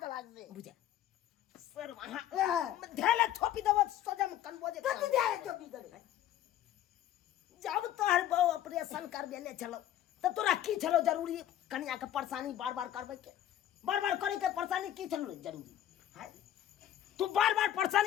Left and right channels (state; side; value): quieter; right; 11.8 dB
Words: दे लागसे बुझा सर वहां ढेले थोपी देब सजम कनबोजे कति ढेले थोपी देब जब तोहर बहु ऑपरेशन करबे ने चलो तो तोरा की चलो जरूरी कन्या के परेशानी बार-बार करबै के बार-बार करे के परेशानी की चलो जरूरी है तू बार-बार